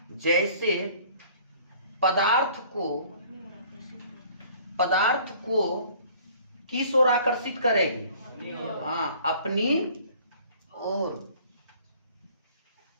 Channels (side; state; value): both; inverted; correlation -0.53